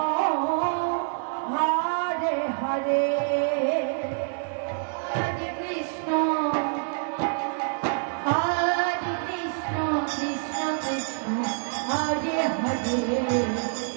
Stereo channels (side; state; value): left; silent; 60 dB below the other